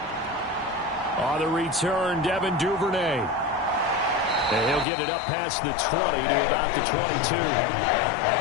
On the return, Devin Duvernay. And he'll get it up past the 20 to about the 22.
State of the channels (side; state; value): right; drops out; at 4.9 s